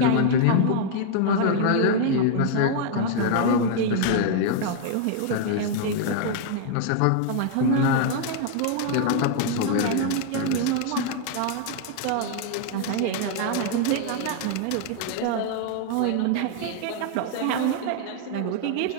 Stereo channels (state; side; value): different; both; correlation 0.00